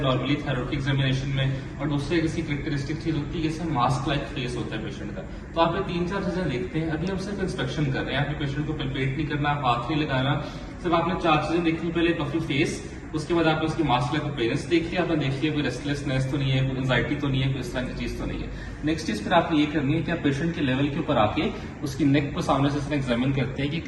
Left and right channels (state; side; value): identical; both; correlation 1.00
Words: नॉर्मली थायराइड की एग्जामिनेशन में, और दूसरे किसी कैरेक्टरिस्टिक चीज होती है जैसे मास्क लाइक फेस होता है पेशेंट का। तो आप ये 3-4 चीजें देखते हैं। अभी हम सिर्फ इंस्पेक्शन कर रहे हैं, आपके पेशेंट को पल्पेट नहीं करना, हाथ नहीं लगाना, सिर्फ आपने 4 चीजें देखनी। पहले पफी फेस, उसके बाद आपने उसकी मास्क लाइक अपीयरेंस देख लिया, आपने देख लिया कोई रेस्टलेसनेस तो नहीं है, कोई एंजाइटी तो नहीं है, कोई इस तरह की चीज तो नहीं है। नेक्स्ट चीज फिर आपने ये करनी है कि आप पेशेंट के लेवल के ऊपर आके उसकी नेक को सामने से एग्जामिन करते हैं कि